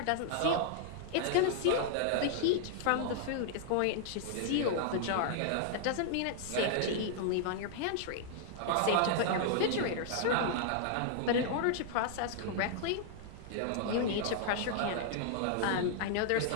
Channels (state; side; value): different; both; correlation -0.01